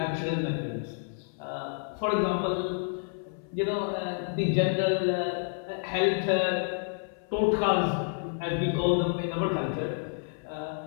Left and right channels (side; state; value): right; silent; 58 dB below the other